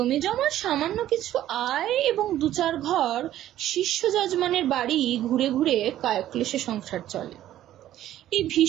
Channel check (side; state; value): left; quieter; 12.8 dB